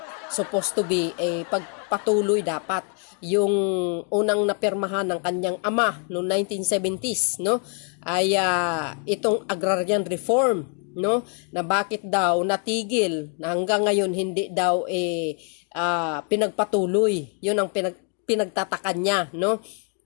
supposed to be pagpatuloy dapat yung unang napirmahan ng kanyang ama noong 1970s, no, ay itong agrarian reform, no, na bakit daw natigil na hanggang ngayon hindi daw pinagpatuloy. Yun ang pinagtatakan niya, no,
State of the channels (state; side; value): quieter; right; 39.8 dB